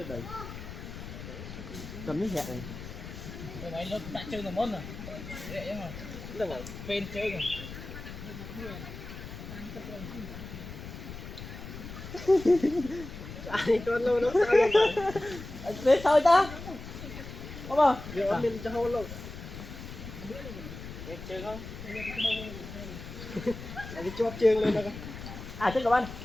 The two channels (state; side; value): noise; left; rumble, 11 dB below the sound